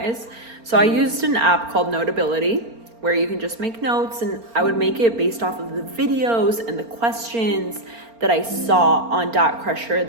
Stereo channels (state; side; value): late; left; 4.4 ms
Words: So I used an app called Notability, where you can just make notes, and I would make it based off of the videos and the questions that I saw on DATCrusher